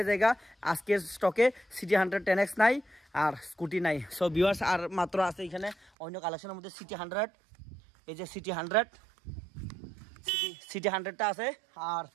যায়। আজকের স্টকে সিটি 100 10X নাই আর স্কুটি নাই। সো ভিউয়ার্স, আর মাত্র আছে এখানে অন্য কালেকশনের মধ্যে সিটি 100, এই যে সিটি 100টা আছে।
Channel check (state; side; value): drops out; left; at 5.9 s